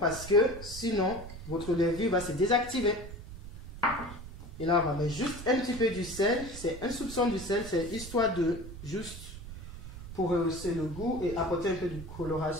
parce que sinon votre levure va se désactiver. Et là, on va mettre juste un petit peu du sel. C'est un soupçon du sel, c'est histoire de juste pour rehausser le goût et apporter un peu de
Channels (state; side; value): noise; right; rumble, 12 dB below the sound